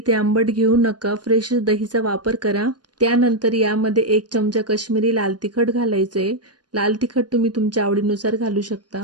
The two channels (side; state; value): left; late; 0.69 ms